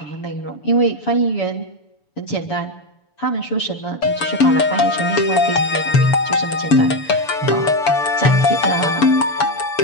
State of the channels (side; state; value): right; late; 7.0 ms